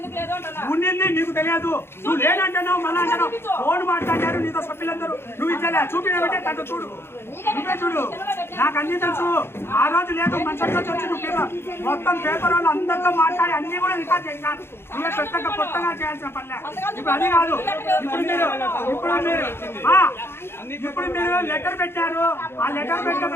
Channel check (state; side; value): late; right; 0.12 ms